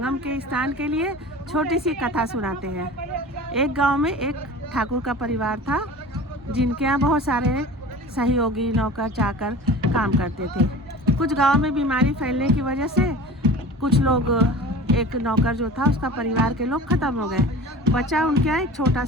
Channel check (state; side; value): normal; both; correlation 0.38